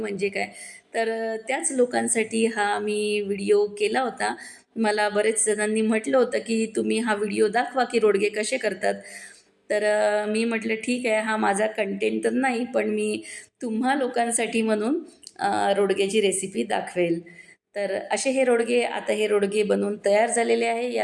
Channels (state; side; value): identical; both; correlation 1.00